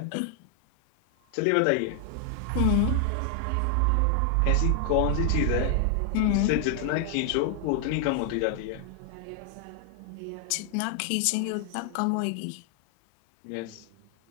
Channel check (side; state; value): both; different; correlation 0.00